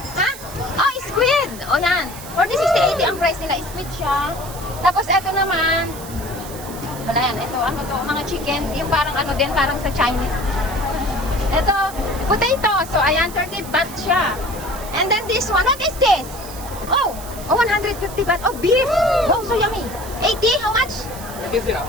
Ha? Oh, squid! O yan. 40, 60, 80 ang price nila. Squid siya. Tapos ito naman, wala yan. Ito, ano to? Mga chicken. Yung parang ano din, parang sa Chinese. Ito, potato. So, ayan, 30 baht siya. And then this one, what is this? Oh, 150 baht. Oh, beef. Oh, so yummy. 80? How much? 80?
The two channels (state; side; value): noise; right; hiss, 14 dB below the sound